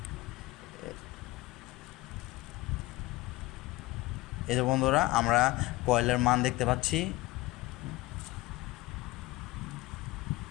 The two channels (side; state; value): right; quieter; 19.7 dB